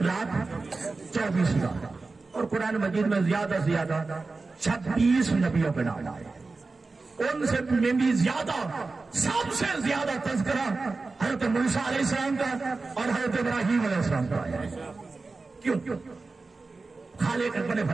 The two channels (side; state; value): left; quieter; 3.8 dB